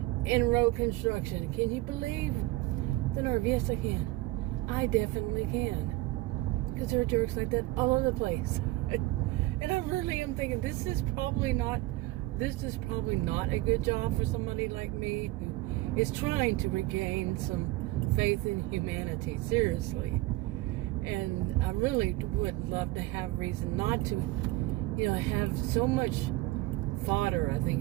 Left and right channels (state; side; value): quieter; left; 18.9 dB